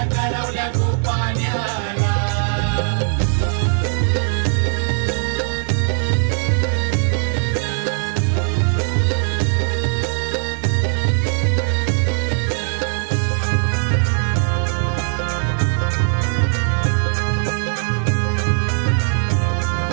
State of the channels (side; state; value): left; silent; 66 dB below the other